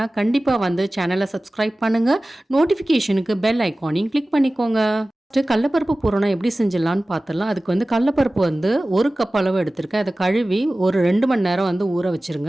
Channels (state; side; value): normal; both; correlation 0.97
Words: கண்டிப்பாக சேனலை சப்ஸ்கிரைப் பண்ணுங்கள். நோட்டிஃபிகேஷனுக்கு பெல் ஐக்கானையும் கிளிக் பண்ணிக்கோங்க. கடலைப்பருப்பு பூரணம் எப்படி செஞ்சிடலான்னு பார்த்துடலாம். அதுக்கு கடலைப்பருப்பு 1 கப் அளவு எடுத்திருக்கேன். அதை கழுவி ஒரு 2 மணி நேரம் ஊற